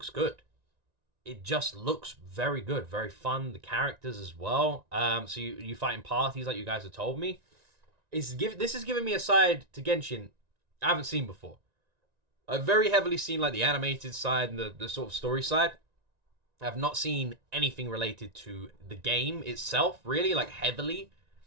good. It just looks very good, very fun. The characters as well. So you fight in parties like you guys have told me. This is giving me a side to Genshin I haven't seen before. I've very heavily seen like the animated side and the sort of story side. I have not seen anything related to the game itself, really, like heavily.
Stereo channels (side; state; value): left; late; 1.9 ms